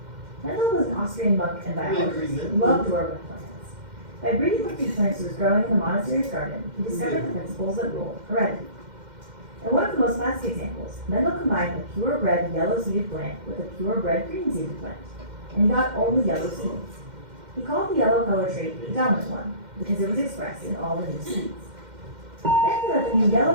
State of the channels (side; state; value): left; late; 2.1 ms